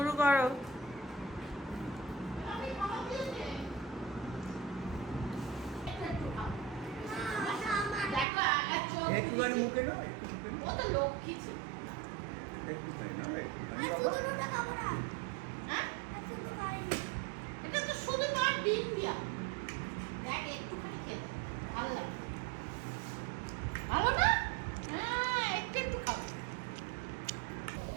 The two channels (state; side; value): drops out; left; at 8.2 s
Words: করো। একটুখানি মুখে নাও, ও তো লক্ষ্মী ছিল। একটুখানি নাও, একটুখানি আর বাবা। শুধু খাবো না। হ্যাঁ, আর শুধু খাইনি। এটা তো শুধু মার ডিম দিয়া। দেখ একটুখানি খেয়ে ভালো লাগে। ভালো না? হ্যাঁ, একটু একটু খাও।